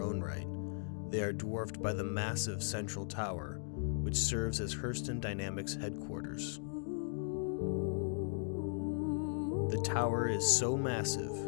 own right, they are dwarfed by the massive central tower, which serves as Hurston Dynamics headquarters. The tower is so massive,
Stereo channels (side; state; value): right; silent; digital silence